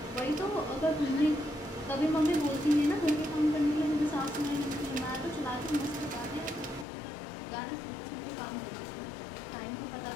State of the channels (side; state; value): right; drops out; at 6.9 s